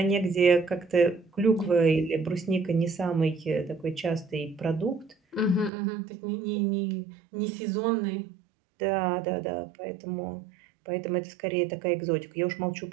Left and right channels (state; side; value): drops out; left; at 5.7 s